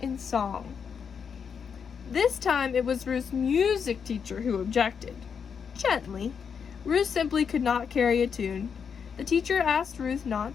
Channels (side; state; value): right; quieter; 6.7 dB